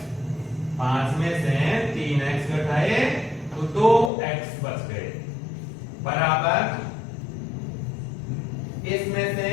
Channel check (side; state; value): right; drops out; at 4.1 s